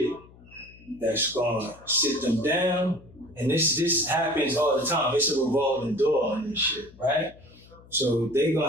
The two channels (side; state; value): left; noise; hum, 23 dB below the sound